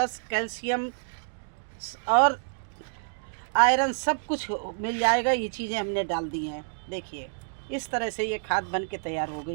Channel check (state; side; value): silent; left; digital silence